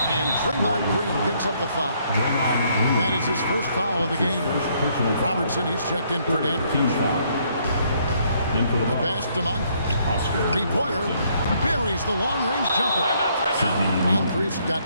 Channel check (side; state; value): both; inverted; correlation -0.69